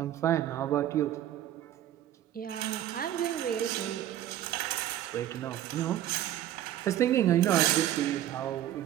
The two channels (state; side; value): quieter; left; 12.2 dB